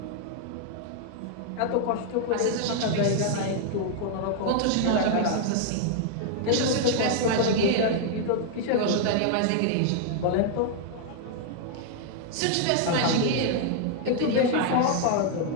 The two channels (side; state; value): both; different; correlation 0.00